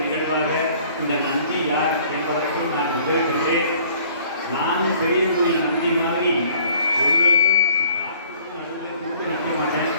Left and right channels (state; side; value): inverted; both; correlation -0.56